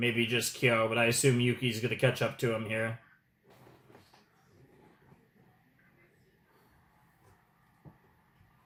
just Kyo, but I assume Yuki's gonna catch up to him here.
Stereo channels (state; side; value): identical; both; correlation 1.00